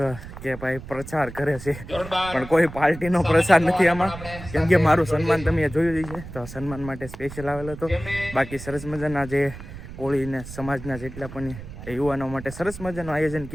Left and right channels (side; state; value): right; noise; rumble, 13 dB below the sound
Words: કે ભાઈ પ્રચાર કરે છે, પણ કોઈ પાર્ટીનો પ્રચાર નથી આમાં. કેમ કે મારું સન્માન તમે જોયું જ છે, તો સન્માન માટે સ્પેશિયલ આવેલો હતો. બાકી સરસ મજાના જે કોળીને સમાજના જેટલા પણ યુવાનો માટે સરસ મજાનું આયોજન